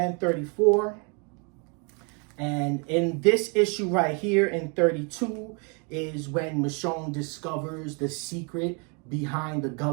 34. And in this issue right here in 32 is when Michonne discovers the secret behind the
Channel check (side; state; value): left; quieter; 35.1 dB